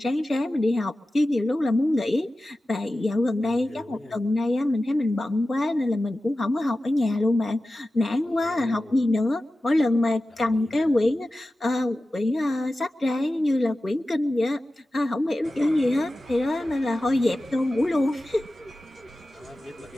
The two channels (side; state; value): both; normal; correlation 0.94